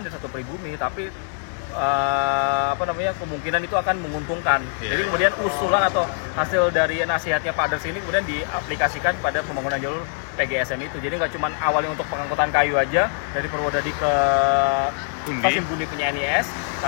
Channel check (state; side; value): silent; right; digital silence